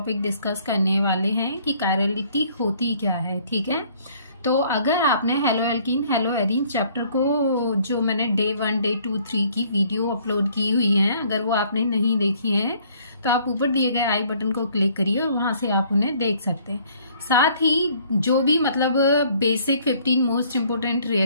डिस्कस करने वाले हैं कि कायरलिटी होती क्या है। ठीक है, तो अगर आपने hello alkene hello arene chapter को जो मैंने डे 1 डे 2 3 की वीडियो अपलोड की हुई है, अगर वो आपने नहीं देखी है तो आप ऊपर दिए गए आई बटन को क्लिक करिए और वहां से आप उन्हें देख सकते हैं। साथ ही जो भी बेसिक 15 मोस्ट इम्पोर्टेंट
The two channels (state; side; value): inverted; both; correlation -0.60